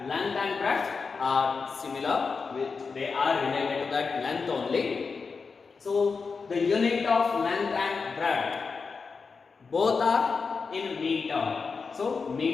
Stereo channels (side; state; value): right; quieter; 4.9 dB